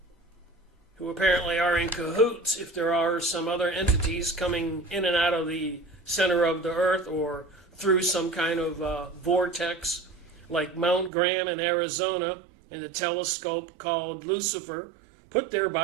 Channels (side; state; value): left; drops out; at 11.1 s